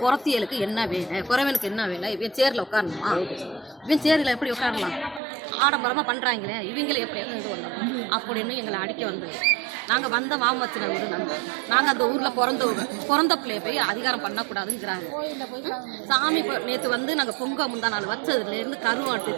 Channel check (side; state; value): left; drops out; at 5.2 s